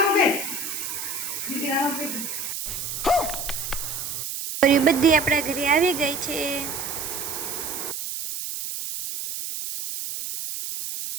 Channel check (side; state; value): right; noise; hiss, 5 dB below the sound